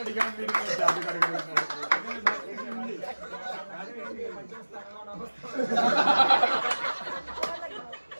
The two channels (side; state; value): both; inverted; correlation -1.00